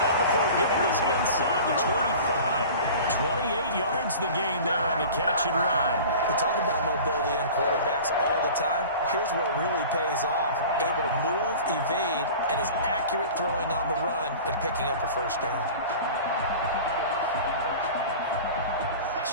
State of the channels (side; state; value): both; inverted; correlation -0.39